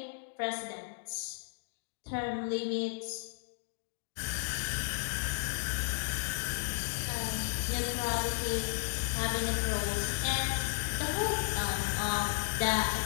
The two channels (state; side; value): silent; right; digital silence